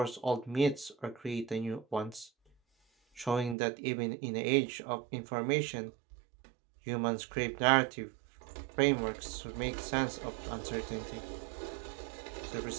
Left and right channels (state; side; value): drops out; left; at 3.6 s